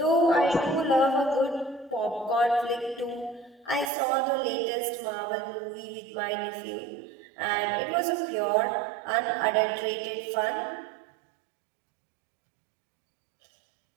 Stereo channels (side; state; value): left; drops out; at 3.9 s